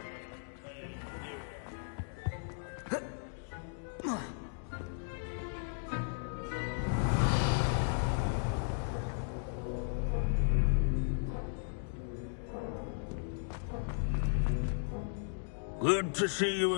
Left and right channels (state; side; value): silent; right; digital silence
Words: it contain myriad Good to see you